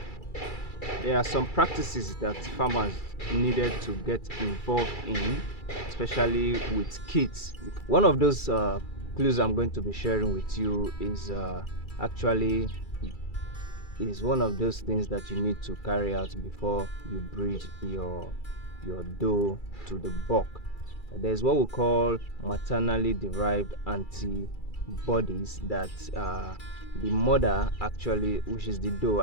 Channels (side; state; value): right; late; 2.3 ms